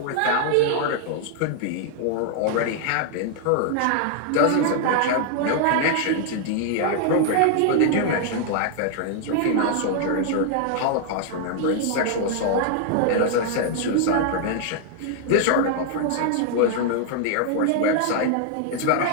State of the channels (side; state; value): both; different; correlation 0.00